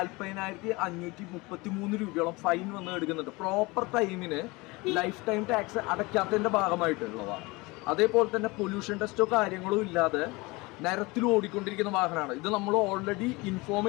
രൂപയോളം ഫൈൻ വന്ന് എടുക്കുന്നുണ്ട്. പ്രോപ്പർ ടൈമിന് ലൈഫ് ടൈം ടാക്സ് അടയ്ക്കാത്തതിന്റെ ഭാഗമായിട്ടുള്ളതാണ്. അതേപോലെ തന്നെ പൊല്യൂഷൻ ടെസ്റ്റോ കാര്യങ്ങളോ ഇല്ലാതെ നിരത്തിൽ ഓടിക്കൊണ്ടിരിക്കുന്ന വാഹനമാണ് ഇത്. നമ്മൾ ഓൾറെഡി ഇൻഫോം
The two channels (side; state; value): right; quieter; 24.0 dB